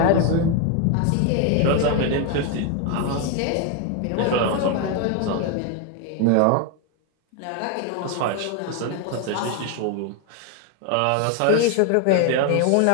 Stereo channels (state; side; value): different; both; correlation 0.01